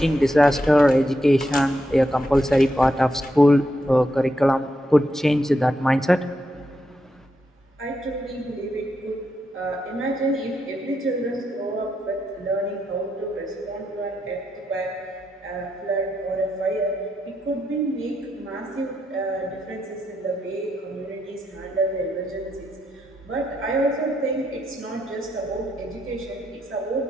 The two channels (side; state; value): both; normal; correlation 0.82